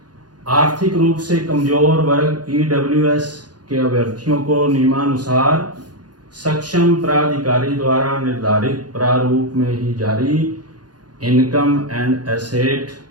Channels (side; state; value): left; late; 0.69 ms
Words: आर्थिक रूप से कमजोर वर्ग ईडब्ल्यूएस के अभ्यर्थियों को नियमानुसार सक्षम प्राधिकारी द्वारा निर्धारित प्रारूप में ही जारी इनकम एंड एसेट